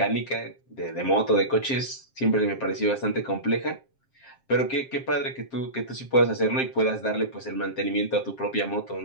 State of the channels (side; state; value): right; late; 7.5 ms